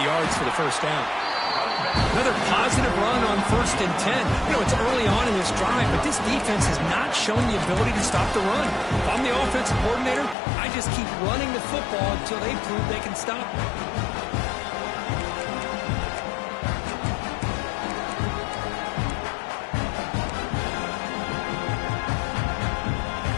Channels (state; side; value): drops out; right; at 10.4 s